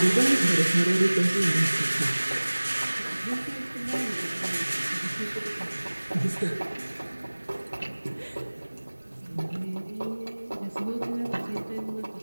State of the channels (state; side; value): inverted; both; correlation -1.00